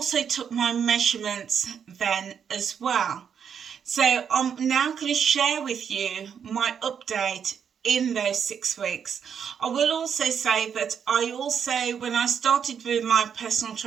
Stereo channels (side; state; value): left; quieter; 7.5 dB